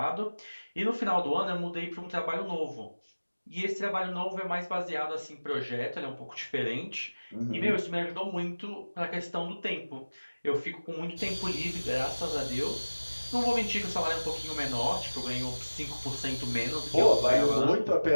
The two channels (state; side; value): inverted; both; correlation -1.00